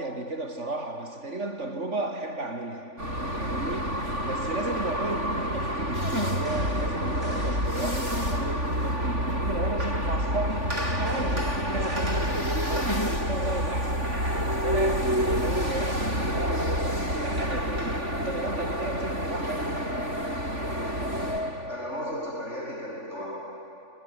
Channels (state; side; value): late; left; 3.5 ms